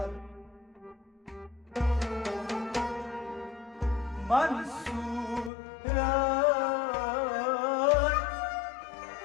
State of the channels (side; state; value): right; drops out; at 5.5 s